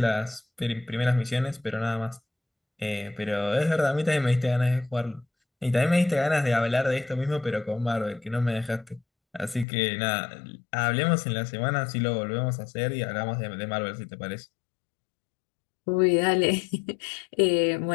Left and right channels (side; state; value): right; drops out; at 9.7 s